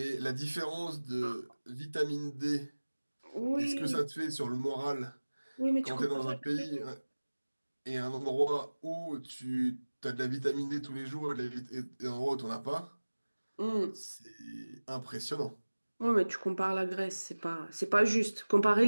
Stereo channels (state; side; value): inverted; both; correlation -1.00